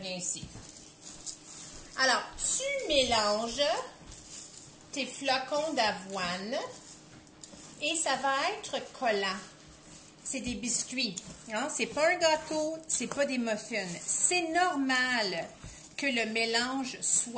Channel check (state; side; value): identical; both; correlation 1.00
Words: ici. Alors, tu mélanges tes flocons d'avoine et ça va être collant. C'est des biscuits. Hein? C'est pas un gâteau, c'est pas des muffins. C'est normal que le mélange